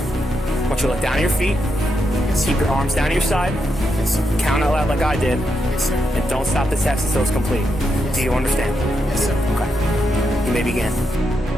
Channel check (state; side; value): normal; both; correlation 0.83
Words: want you to look down at your feet, keep your arms down to your side, Yes, sir. count out loud like I did, Yes, sir. and don't stop the test until it's complete. Do you understand? Yes, sir. Okay. You may begin.